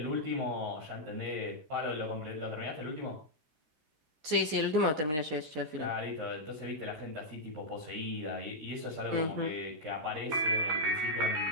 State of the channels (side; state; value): left; late; 13 ms